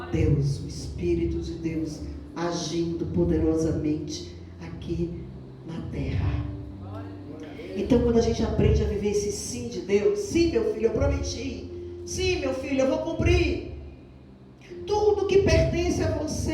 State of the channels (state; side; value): identical; both; correlation 1.00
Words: Deus, o Espírito de Deus, agindo poderosamente aqui na terra. Então, quando a gente aprende a viver esse sim de Deus, sim, meu filho, eu prometi. Sim, meu filho, eu vou cumprir. Tudo que pertence a